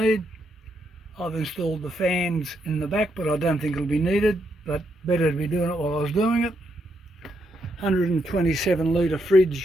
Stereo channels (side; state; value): both; normal; correlation 0.79